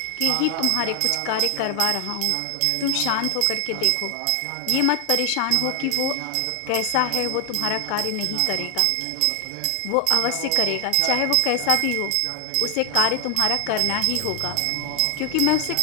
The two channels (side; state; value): both; different; correlation 0.00